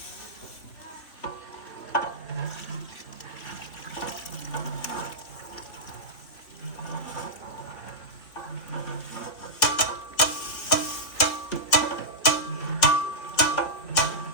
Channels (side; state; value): right; late; 3.5 ms